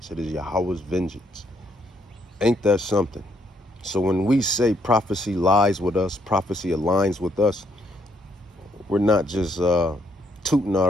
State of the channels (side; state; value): both; normal; correlation 0.72